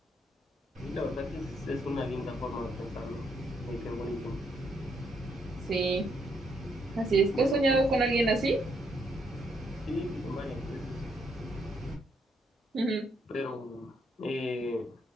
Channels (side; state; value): both; normal; correlation 0.74